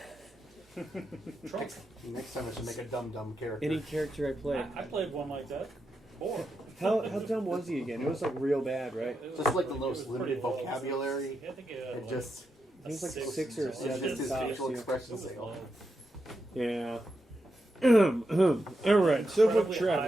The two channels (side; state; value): both; normal; correlation 0.86